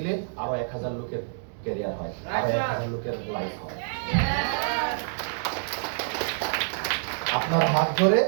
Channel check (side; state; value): left; silent; digital silence